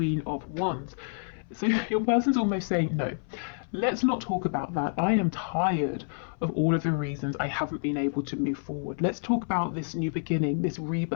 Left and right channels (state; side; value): silent; right; 59 dB below the other